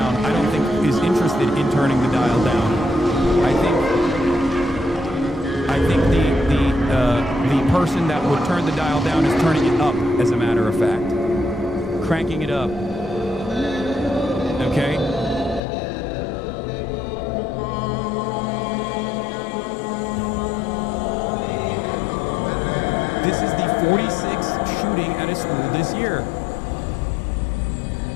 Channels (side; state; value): right; drops out; at 15.6 s